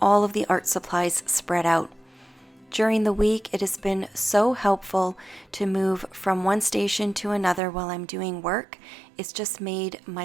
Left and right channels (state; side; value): drops out; left; at 7.6 s